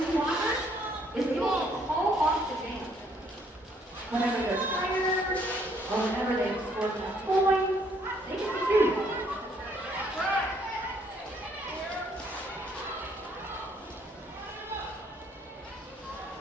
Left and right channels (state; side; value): normal; both; correlation 0.66